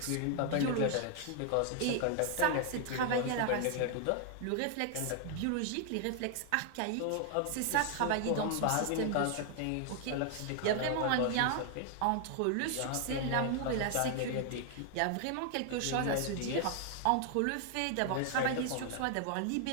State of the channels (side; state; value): both; different; correlation 0.00